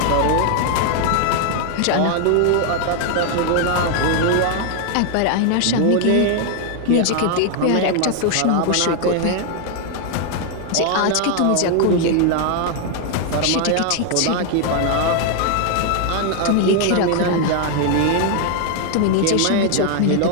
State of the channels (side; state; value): both; different; correlation 0.00